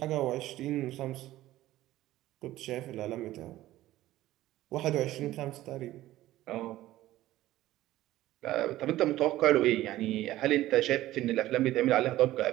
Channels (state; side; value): quieter; left; 15.3 dB